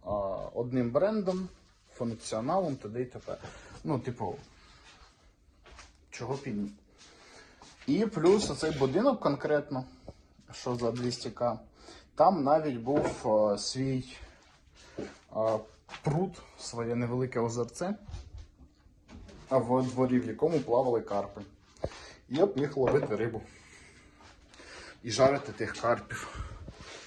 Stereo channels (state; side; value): identical; both; correlation 1.00